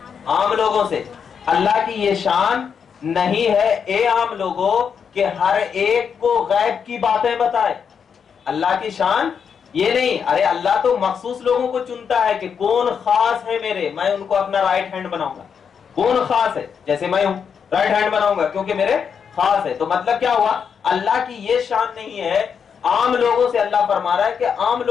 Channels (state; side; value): quieter; right; 6.9 dB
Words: عام لوگوں سے۔ اللہ کی یہ شان نہیں ہے اے عام لوگوں کہ ہر ایک کو غیب کی باتیں بتائے، اللہ کی شان یہ نہیں۔ ارے اللہ تو مخصوص لوگوں کو چنتا ہے کہ کون خاص ہے میرے، میں ان کو اپنا رائٹ ہینڈ بناؤں گا، کون خاص ہے، جیسے میں ہوں رائٹ ہینڈ بناؤں گا کیونکہ میرے خاص ہے۔ تو مطلب کیا ہوا؟ اللہ کی یہ شان نہیں ہے، عام لوگوں سے اللہ فرما رہا ہے کہ عام